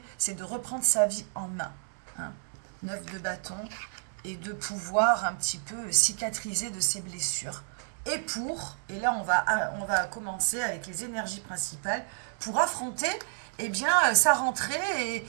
c'est de reprendre sa vie en main, hein. 9 de bâton, et de pouvoir un petit peu cicatriser de ses blessures. Et là on va commencer avec les énergies principales, pour affronter eh bien, sa rentrée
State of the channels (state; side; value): silent; left; 58 dB below the other